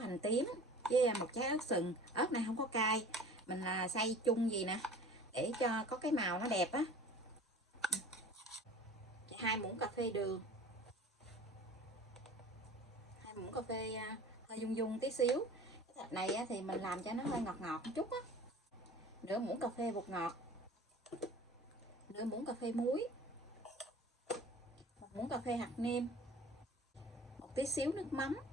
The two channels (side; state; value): both; normal; correlation 0.43